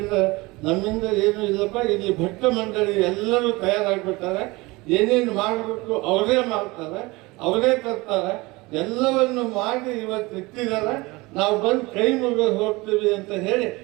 ನಮ್ಮಿಂದ ಏನೂ ಇಲ್ಲಪ್ಪ, ಇಲ್ಲಿ ಭಕ್ತ ಮಂಡಳಿ ಎಲ್ಲರೂ ತಯಾರಾಗ್ಬಿಡ್ತಾರೆ, ಏನೇನು ಮಾಡಬೇಕು ಅವರೇ ಮಾಡ್ತಾರೆ, ಅವರೇ ತರ್ತಾರೆ, ಎಲ್ಲವನ್ನು ಮಾಡಿ ಇವತ್ತು ಇಟ್ಟಿದ್ದಾರೆ, ನಾವು ಬಂದು ಕೈ ಮುಗಿದು ಹೋಗ್ತೀವಿ ಅಂತ ಹೇಳಿ.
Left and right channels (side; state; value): left; quieter; 22.9 dB